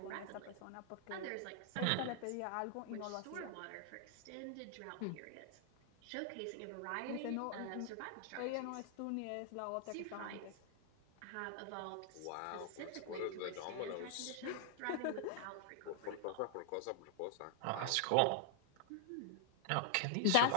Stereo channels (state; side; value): different; both; correlation 0.00